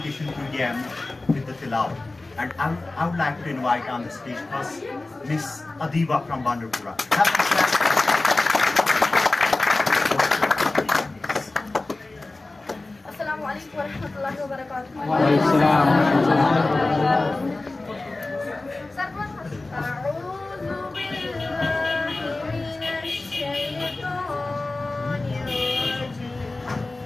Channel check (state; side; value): quieter; right; 3.1 dB